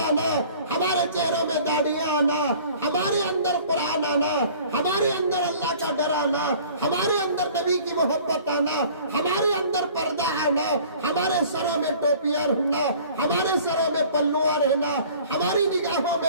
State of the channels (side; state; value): both; inverted; correlation -0.49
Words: हमारे चेहरों में दाढ़ियां आना, हमारे अंदर कुरान आना, हमारे अंदर अल्लाह का डर आना, हमारे अंदर नबी की मोहब्बत आना, हमारे अंदर पर्दा आना, हमारे सरों में टोपियां रहना, हमारे सरों में पल्लुआ रहना, हमारी निगाहों